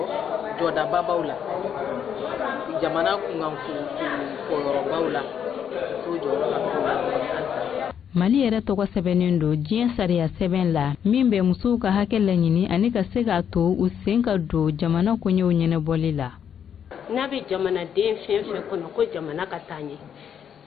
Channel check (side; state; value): right; quieter; 8.3 dB